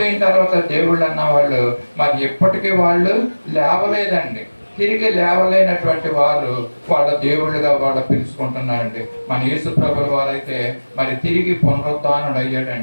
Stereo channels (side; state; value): both; inverted; correlation -1.00